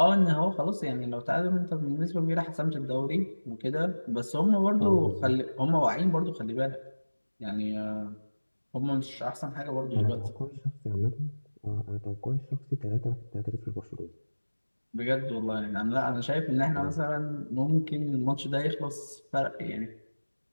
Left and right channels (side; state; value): both; inverted; correlation -1.00